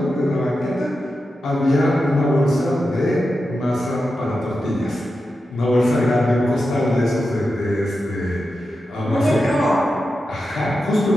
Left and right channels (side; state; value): both; normal; correlation 0.90